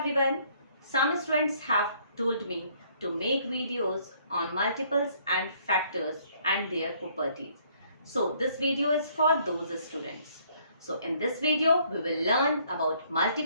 Some students have told me to make videos on multiples and factors and their properties. So this video is for those students. So in this video we will learn about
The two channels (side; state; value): both; inverted; correlation -0.63